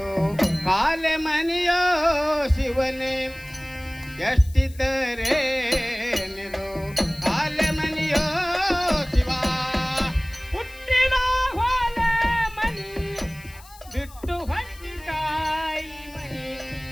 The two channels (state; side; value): noise; left; hiss, 22 dB below the sound